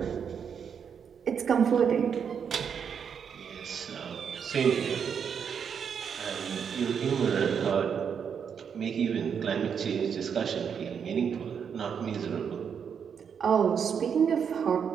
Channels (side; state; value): left; quieter; 7.2 dB